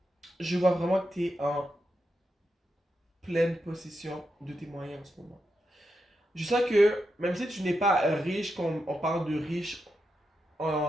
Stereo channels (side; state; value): both; normal; correlation 0.86